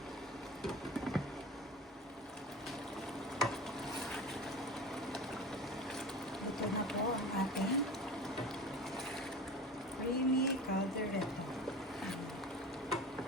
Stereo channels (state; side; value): normal; both; correlation 0.34